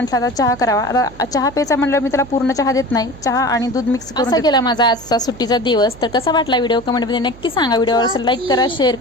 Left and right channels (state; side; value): noise; right; hum, 19 dB below the sound